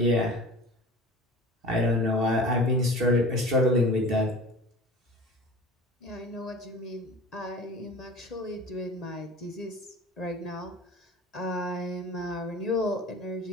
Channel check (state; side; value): normal; both; correlation 0.39